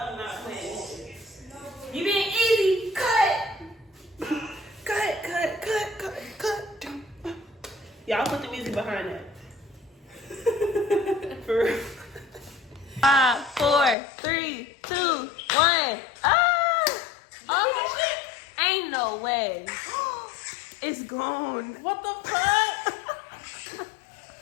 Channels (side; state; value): right; drops out; at 14.0 s